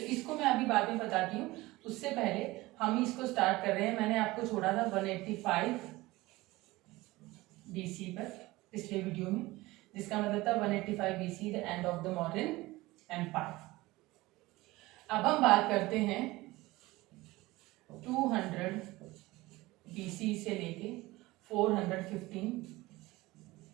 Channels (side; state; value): left; quieter; 19.9 dB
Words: इसको मैं अभी बाद में बताती हूँ. उससे पहले हम इसको स्टार्ट कर रहे हैं. मैंने आपको छोड़ा था 185 BC पर पिछले वीडियो में, जिसका मतलब था 185 BC the end of the Mauryan empire. अब हम बात करते हैं 200 BC से लेके 415